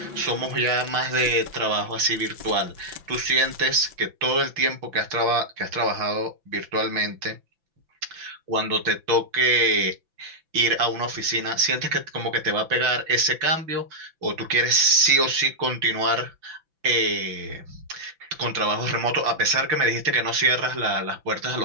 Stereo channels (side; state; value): left; late; 5.9 ms